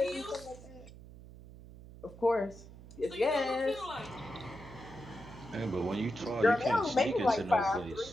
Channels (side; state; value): right; noise; hum, 17 dB below the sound